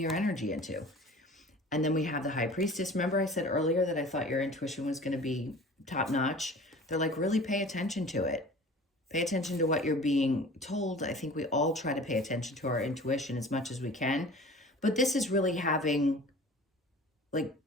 energy into. And then we have the High Priestess. Remember I said earlier that I thought your intuition was going to be top notch? They're like, really pay attention to it. Pay attention to what you're being told. I think we all try to pay attention to our intuition as much as we can. But this is really having like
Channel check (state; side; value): normal; both; correlation 0.43